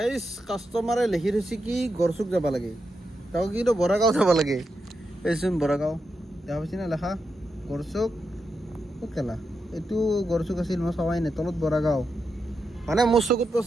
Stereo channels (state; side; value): normal; both; correlation 0.86